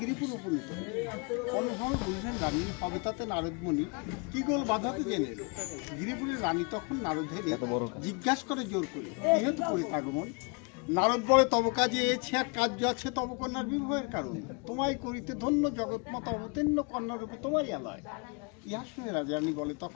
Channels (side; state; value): right; quieter; 33.1 dB